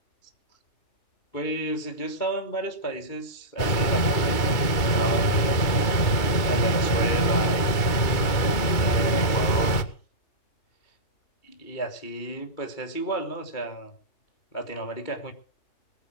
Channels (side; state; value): right; late; 2.3 ms